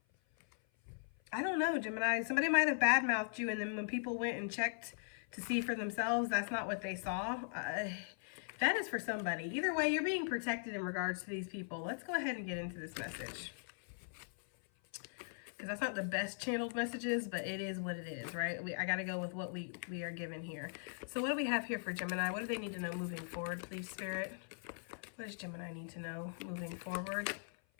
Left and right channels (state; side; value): silent; right; 51 dB below the other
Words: I don't know, Gemini. Somebody might have badmouthed you, and then when people went and checked to see for themselves, that's not what they saw. That is for somebody. Either way, you're being protected in regards to these people. Let's go ahead and get into this message. Because that's not the best channeled messages, but it is what it is, right? I got to go with what we are given here. So what do we have here for Gemini? What do they need to know moving forward, please, Spirit? What does Gemini need to know moving forward?